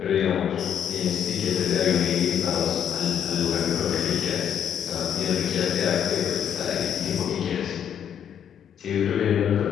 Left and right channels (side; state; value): right; quieter; 8.9 dB